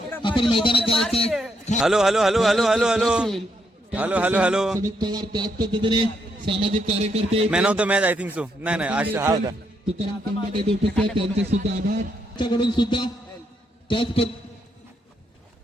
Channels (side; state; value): both; normal; correlation 0.77